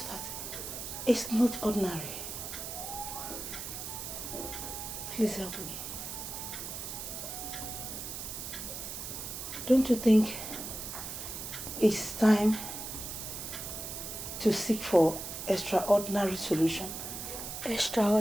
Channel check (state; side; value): noise; right; hiss, 7 dB below the sound